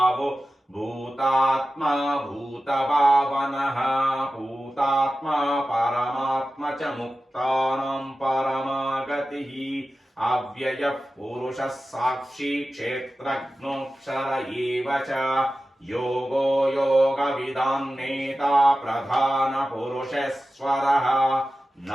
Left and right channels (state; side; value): normal; both; correlation 0.94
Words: భూతాత్మా భూతభావనః భూతాత్మా పరమాత్మ చ ముక్తానాం పరమాగతిః అవ్యయః పురుషः సాక్షి క్షేత్రజ్ఞోక్షర ఏవ చ యోగో యోగవిదాం నేతా ప్రధాన పురుషేశ్వరః